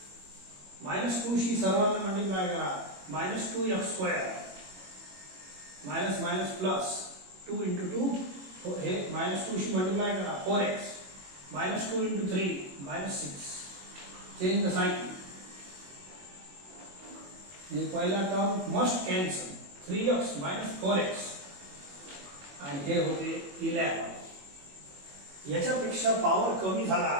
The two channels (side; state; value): left; late; 21 ms